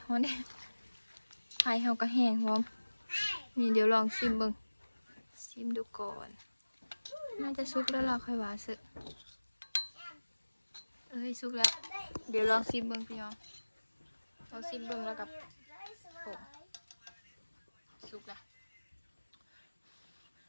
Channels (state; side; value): inverted; both; correlation -1.00